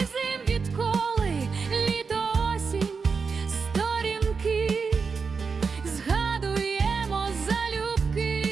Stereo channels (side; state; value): left; quieter; 5.2 dB